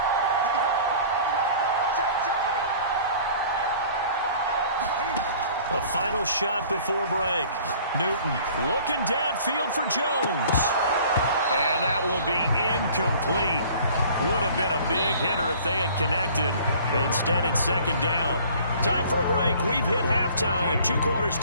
A final shot before break. Newton looking downfield for Jones. And that will be incomplete. Would have been a big hitter if they had connected. Instead, it's second down. Time for a break. We've hit halftime. 2 quarters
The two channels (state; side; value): inverted; both; correlation -0.50